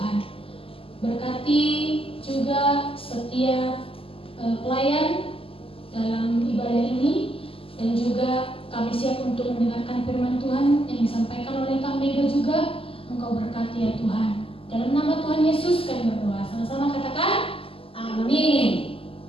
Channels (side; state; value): right; late; 0.26 ms